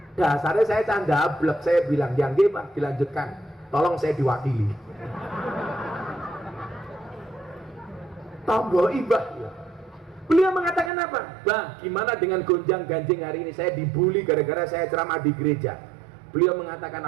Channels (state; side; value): drops out; left; at 10.9 s